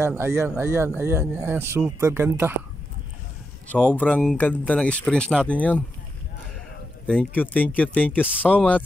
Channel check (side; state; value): both; normal; correlation 0.85